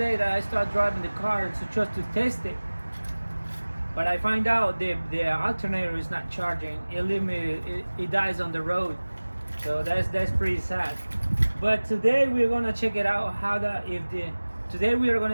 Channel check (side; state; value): both; inverted; correlation -1.00